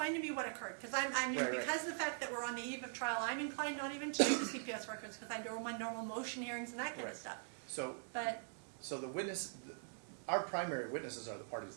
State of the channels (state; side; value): silent; left; digital silence